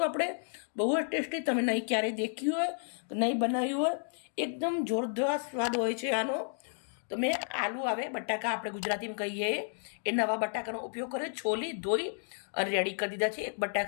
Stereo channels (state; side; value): silent; right; digital silence